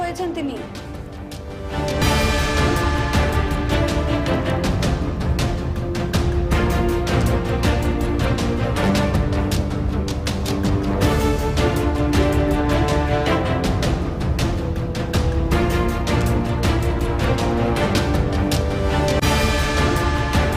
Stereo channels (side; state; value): both; identical; correlation 1.00